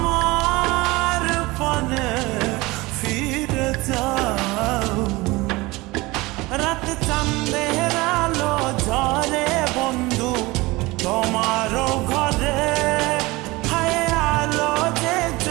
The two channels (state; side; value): quieter; left; 21.9 dB